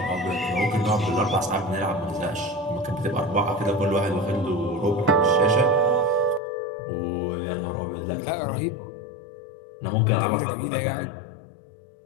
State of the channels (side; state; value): right; drops out; at 6.4 s